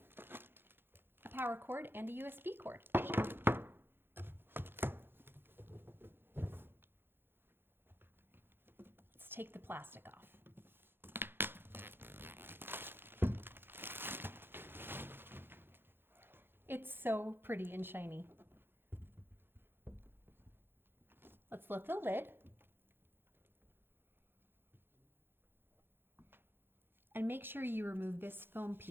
a power cord, and a USB cord. Let's take the plastic off. It's so pretty and shiny. Let's lift the lid and make sure you remove this foam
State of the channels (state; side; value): late; left; 0.10 ms